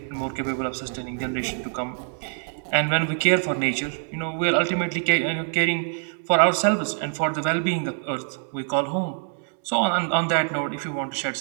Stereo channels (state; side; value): silent; left; 58 dB below the other